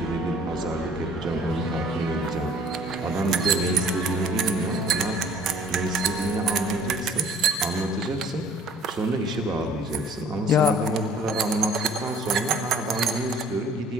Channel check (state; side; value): normal; both; correlation 0.53